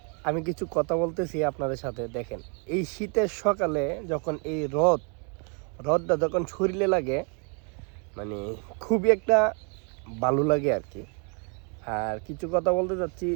আমি কিছু কথা বলতেছি আপনাদের সাথে। দেখেন, এই শীতের সকালে যখন এই রোদটা যখন শরীরে লাগে, মানে খুবই একটা ভালো লাগে আর কি। আর কিছু কথা বলতে চাচ্ছি,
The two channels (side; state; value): left; quieter; 36.9 dB